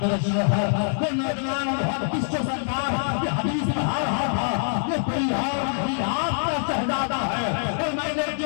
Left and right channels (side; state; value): right; silent; digital silence